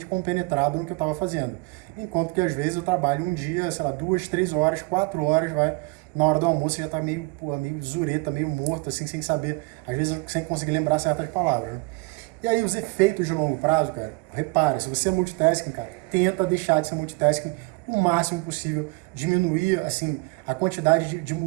compenetrado no que eu estava fazendo. Enquanto que às vezes eu trabalho um dia, sei lá, 2, 3 horas, 4 horas, vai, na hora do almoço você já está meio zureta, meio morto, assim, sem saber, às vezes sem conseguir lembrar certas palavras, né? E aí os efeitos de longo prazo, cara, repara, se você é multitasking, cara, tenta deixar de ser multitasking o máximo possível, diminuir, assim, a quantidade de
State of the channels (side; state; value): left; quieter; 27.6 dB